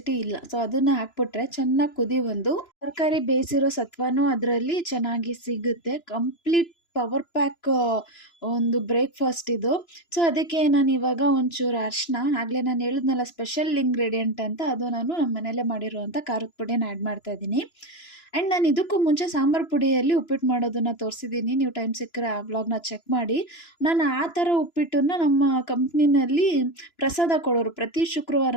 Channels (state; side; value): late; right; 2.9 ms